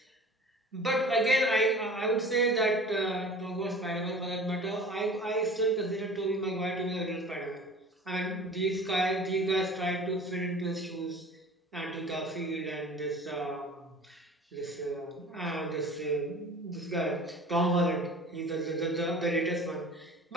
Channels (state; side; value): normal; both; correlation 0.42